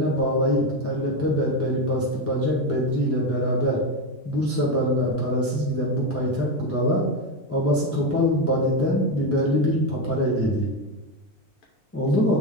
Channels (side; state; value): both; normal; correlation 0.12